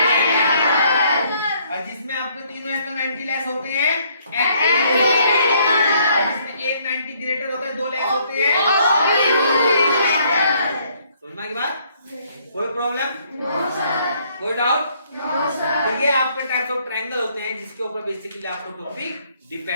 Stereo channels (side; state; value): both; inverted; correlation -0.66